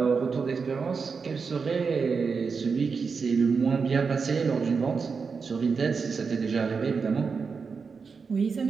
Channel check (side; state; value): left; quieter; 5.3 dB